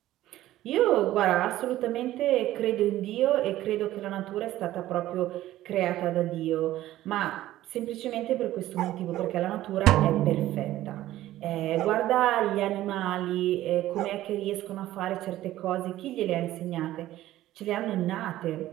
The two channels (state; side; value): quieter; left; 14.6 dB